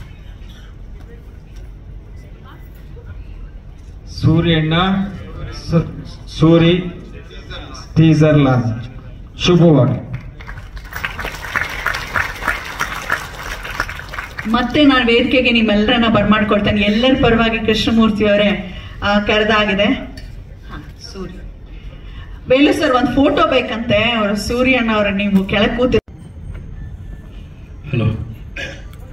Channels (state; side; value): identical; both; correlation 1.00